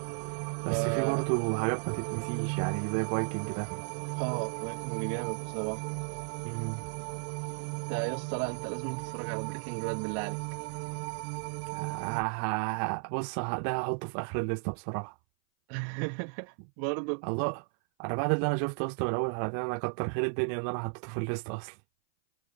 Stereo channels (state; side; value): silent; left; 55 dB below the other